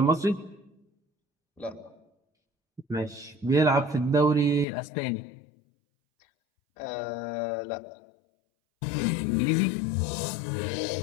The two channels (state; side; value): drops out; right; at 4.7 s